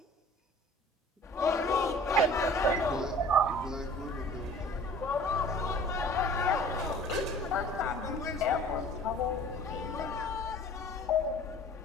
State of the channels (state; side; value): normal; both; correlation 0.47